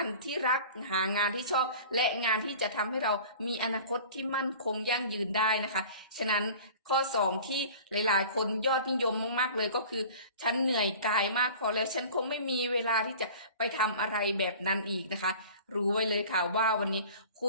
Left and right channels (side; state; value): both; inverted; correlation -0.43